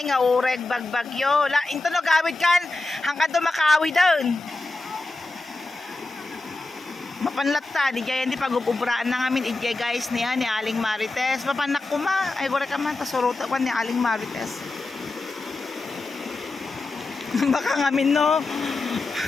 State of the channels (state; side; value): quieter; right; 3.2 dB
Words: nga ureg bagbagyo. Into no gawid kan, hanggang tumakawi doon. Mapanlatta, di jay hindi pag-ubraan na ngamin ijay, guys, niya ni Aling Marites. Mapanak ko ma, ay gore ka man, tasurota ko ni Aling Marites. Baka ngamin no,